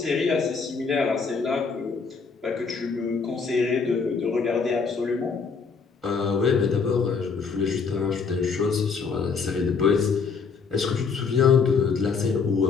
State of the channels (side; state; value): right; quieter; 5.3 dB